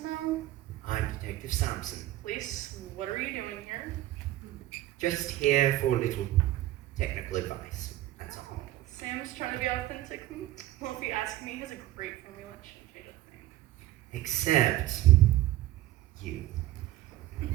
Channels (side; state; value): left; quieter; 15.4 dB